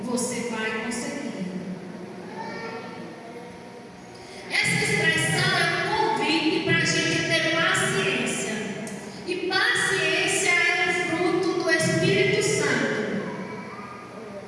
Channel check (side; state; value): both; identical; correlation 1.00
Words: você vai conseguir.